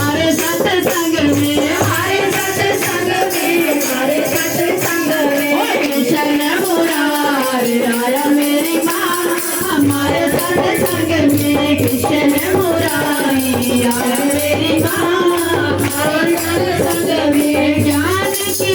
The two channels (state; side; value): identical; both; correlation 1.00